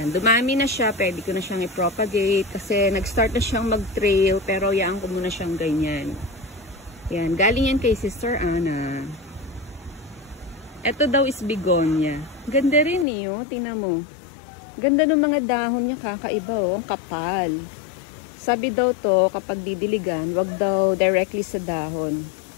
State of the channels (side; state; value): right; drops out; at 13.1 s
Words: dumami na siya. Pwede ko na siyang i-propagate kasi nag-start na siyang mag-trail pero yaan ko muna siyang ganyan. Yan, galing yan kay Sister Anna. Ito daw is begonia. Ganda rin eh, oh. Tingnan mo. Ganda ng mga dahon niya, kakaiba, oh. Ang kapal. Sabi daw to, kapag didiligan, wag daw directly sa dahon.